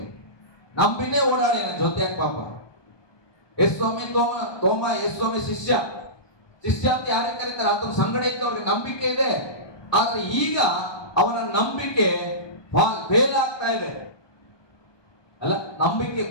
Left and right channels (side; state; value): right; late; 1.2 ms